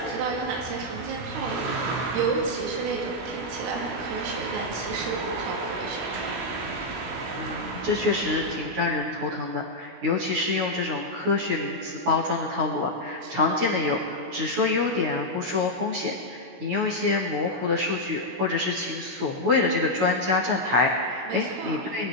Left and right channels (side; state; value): left; late; 16 ms